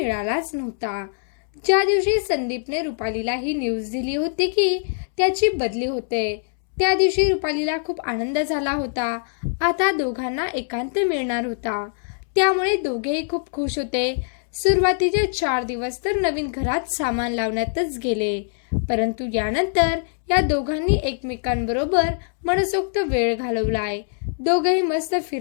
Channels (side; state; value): right; silent; 64 dB below the other